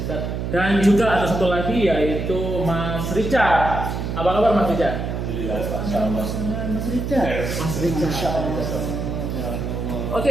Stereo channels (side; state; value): right; noise; hum, 3 dB below the sound